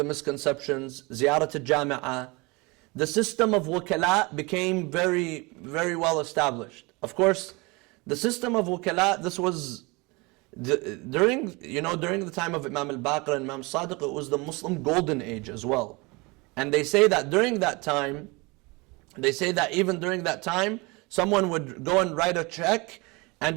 misconceptions, Ziyarat al-Jami'ah. The system of wakala became very, very well established. Of course, the system of wakala, this was during the time of Imam al-Baqir and Imam Sadiq, it was the Muslim golden age as well. And they say that even during that time, someone would go and write a check, and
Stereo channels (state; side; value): quieter; left; 26.1 dB